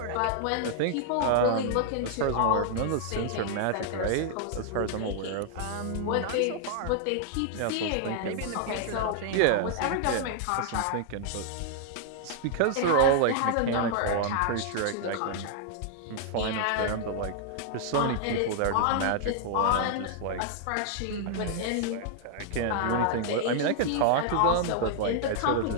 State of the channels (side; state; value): both; different; correlation -0.01